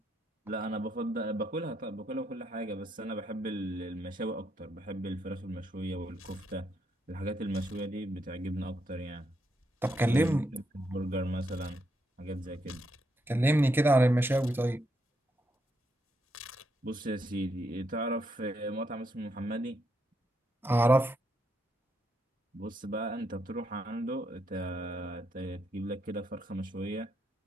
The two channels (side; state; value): both; normal; correlation 0.79